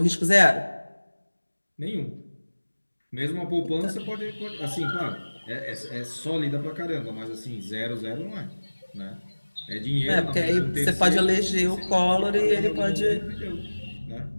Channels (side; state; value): both; inverted; correlation -1.00